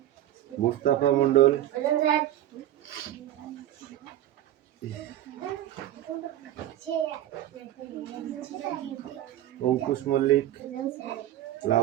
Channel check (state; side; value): quieter; left; 12.8 dB